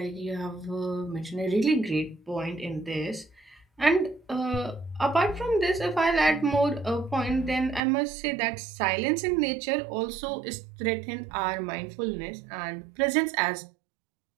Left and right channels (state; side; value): drops out; left; at 7.8 s